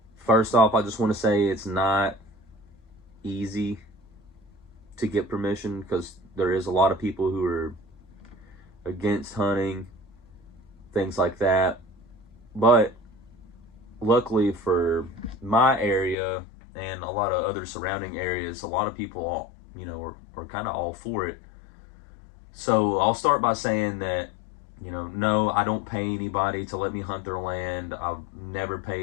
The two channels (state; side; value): drops out; right; at 16.2 s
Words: first off, I just want to say it's not easy to get permission because there is a lot of people who are against hunting, things like that. But luckily for my area and a lot of other surrounding areas, a lot of people, are kind of all for it. So I'll start by saying that, no, I don't pay anybody to let me hunt their land. I've never